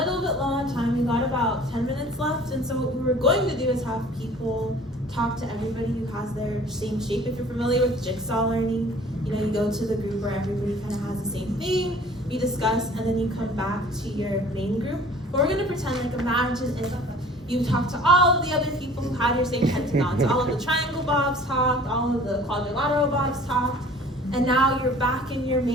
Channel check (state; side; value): normal; both; correlation 0.49